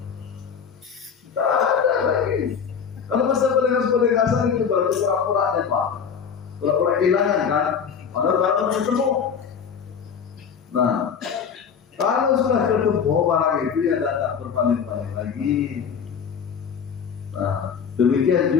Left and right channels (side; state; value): right; quieter; 6.9 dB